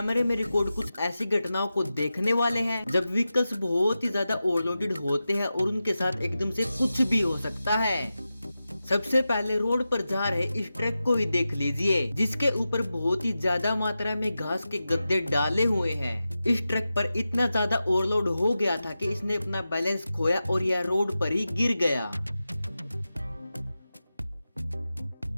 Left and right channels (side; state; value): both; inverted; correlation -0.93